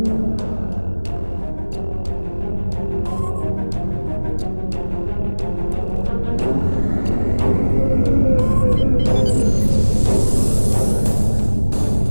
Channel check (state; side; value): inverted; both; correlation -1.00